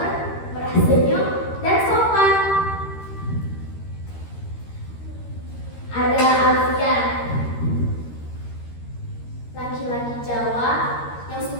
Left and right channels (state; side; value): late; right; 13 ms